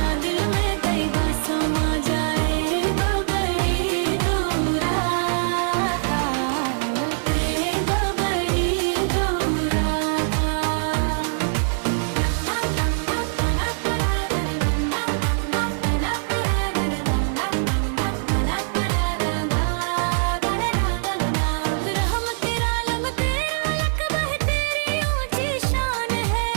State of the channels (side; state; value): left; silent; 60 dB below the other